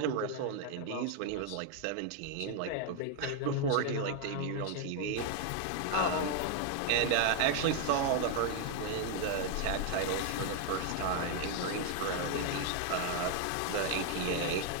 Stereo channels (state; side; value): different; both; correlation 0.00